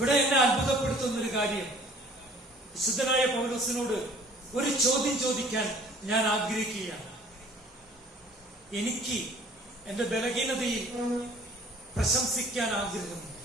എന്നെ അത്ഭുതപ്പെടുത്തുന്ന ഒരു കാര്യം, വിശുദ്ധനായ പൗലോസിനോട് ഒരു ചോദ്യം ചോദിക്കാൻ ഞാൻ ആഗ്രഹിക്കുകയാണ്. എനിക്ക് എന്റെ ബലഹീനതയിൽ പ്രശംസിക്കാൻ ആഗ്രഹമുണ്ട്.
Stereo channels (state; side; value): normal; both; correlation 0.52